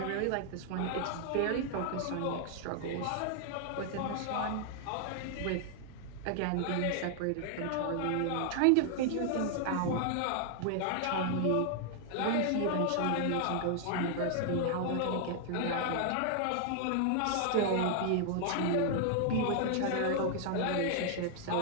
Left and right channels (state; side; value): different; both; correlation 0.00